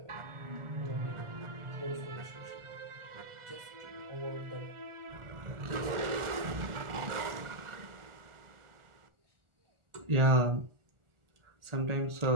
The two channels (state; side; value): late; left; 1.4 ms